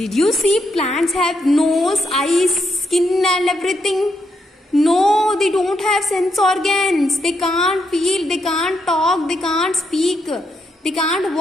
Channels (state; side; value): normal; both; correlation 0.79